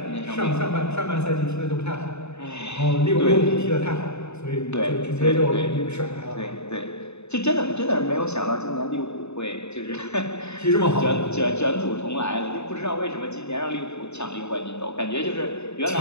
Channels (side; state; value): right; late; 0.81 ms